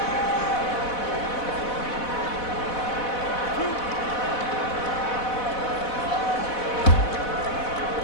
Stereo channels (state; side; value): late; right; 4.1 ms